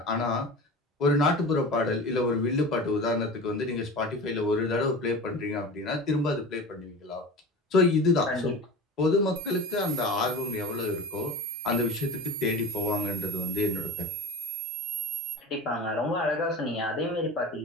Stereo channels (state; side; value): normal; both; correlation 0.33